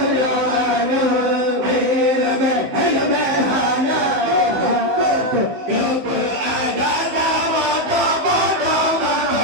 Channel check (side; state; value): left; late; 16 ms